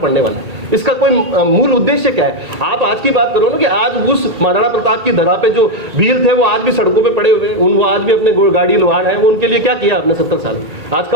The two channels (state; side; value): late; left; 1.8 ms